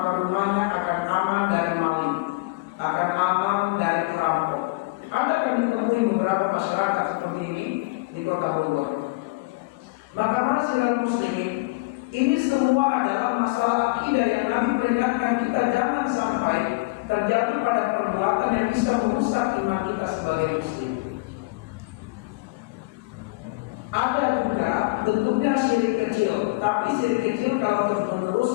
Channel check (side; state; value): right; quieter; 24.6 dB